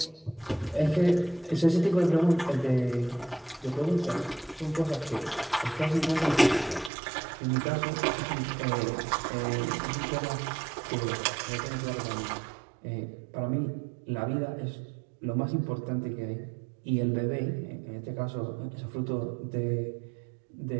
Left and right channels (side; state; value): left; drops out; at 6.9 s